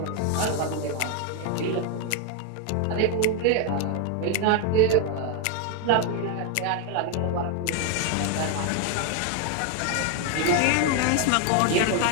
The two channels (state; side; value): different; both; correlation 0.01